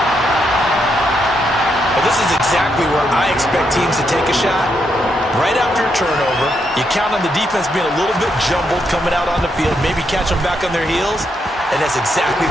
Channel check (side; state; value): both; normal; correlation 0.79